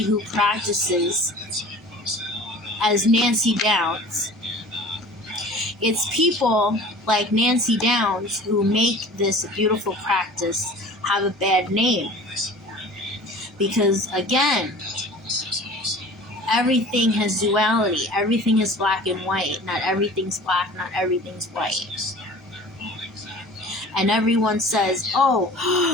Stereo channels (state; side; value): normal; both; correlation 0.42